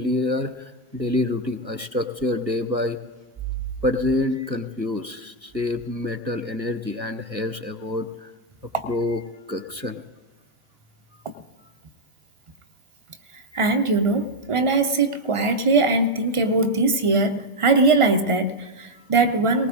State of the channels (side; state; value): left; late; 1.4 ms